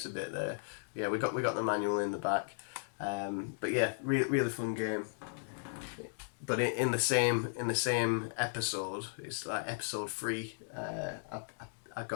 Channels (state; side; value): silent; right; digital silence